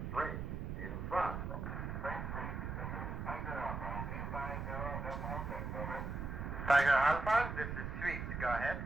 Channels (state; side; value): noise; right; rumble, 4 dB below the sound